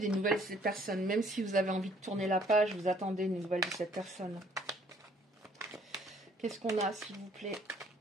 nouvelles de cette personne, même si vous avez envie de tourner la page, vous attendez des nouvelles de cette personne. Qu'est-ce qu'on a, s'il vous plaît?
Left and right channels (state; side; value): normal; both; correlation 0.60